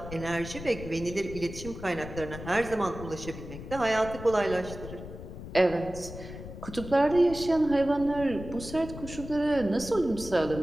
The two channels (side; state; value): left; noise; rumble, 11 dB below the sound